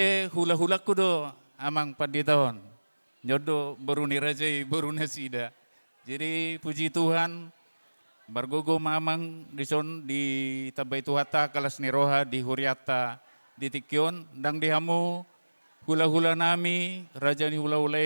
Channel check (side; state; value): both; inverted; correlation -1.00